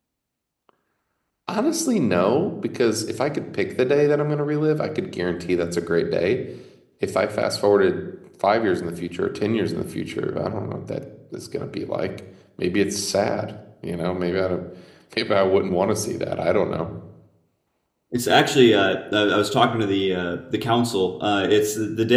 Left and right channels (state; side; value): identical; both; correlation 1.00